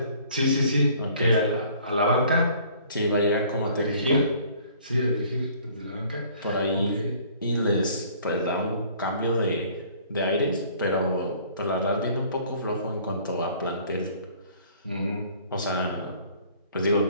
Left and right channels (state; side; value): inverted; both; correlation -0.55